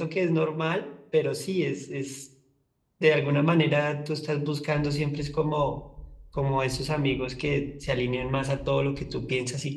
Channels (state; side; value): identical; both; correlation 1.00